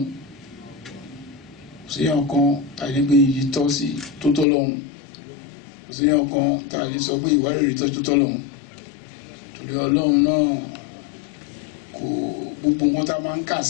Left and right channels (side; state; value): right; drops out; at 4.5 s